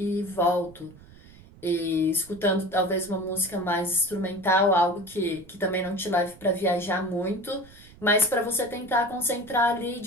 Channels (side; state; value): right; noise; rumble, 22 dB below the sound